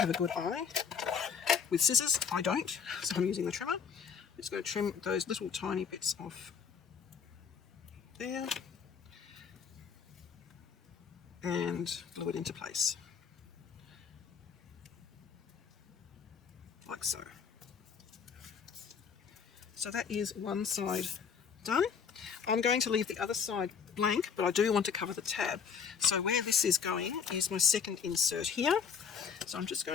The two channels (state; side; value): quieter; right; 6.7 dB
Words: a good eye. With scissors, I don't, so I'm using the trimmer. I'm just going to trim those little tiny bits off there and glue it into place, like so. So that is one side done. I'm going to leave the other side blank, but I do want to cover the tab. So where this is going is my second insert here. So I'm just